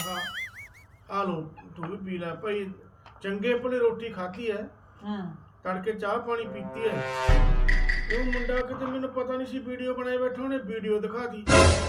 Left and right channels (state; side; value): identical; both; correlation 1.00